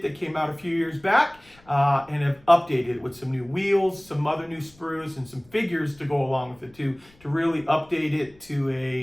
that came out a few years back and have updated it with some new wheels, some other new sprues, and some figures to go along with it to really update it to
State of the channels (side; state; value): left; noise; rumble, 28 dB below the sound